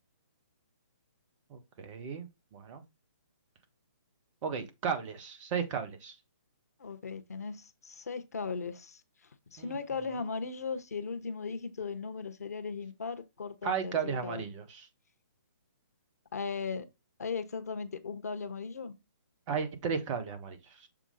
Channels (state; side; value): inverted; both; correlation -0.39